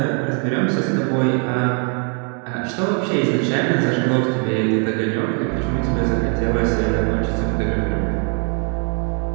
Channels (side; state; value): left; quieter; 39.8 dB